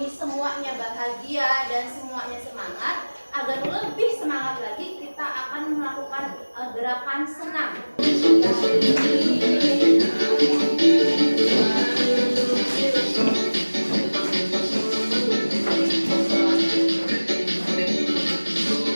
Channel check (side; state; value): both; inverted; correlation -1.00